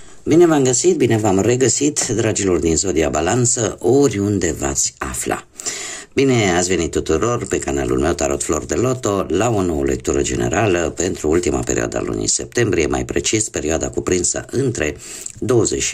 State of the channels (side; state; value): both; identical; correlation 1.00